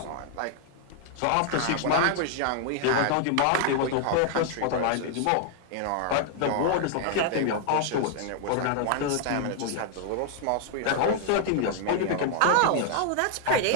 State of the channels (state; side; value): different; both; correlation 0.00